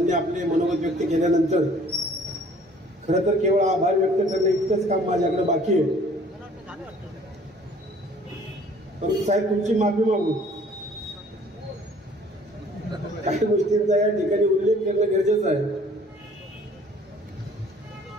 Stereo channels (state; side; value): normal; both; correlation 0.55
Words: आपले मनोगत व्यक्त केल्यानंतर खरं तर केवळ आभार व्यक्त करणे इतकंच काम माझ्याकडे बाकी आहे. परंतु साहेब तुमची माफी मागू, काही गोष्टींचा या ठिकाणी उल्लेख करणं गरजेचं आहे.